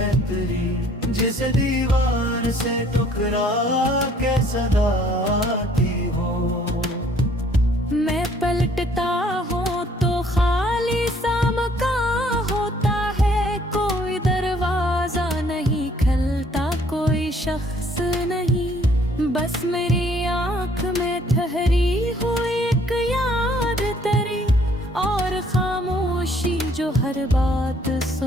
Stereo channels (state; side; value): normal; both; correlation 0.60